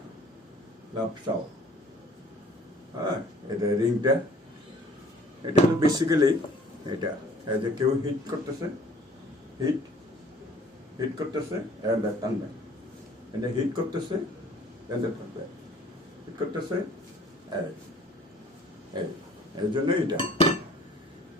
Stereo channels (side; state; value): both; normal; correlation 0.53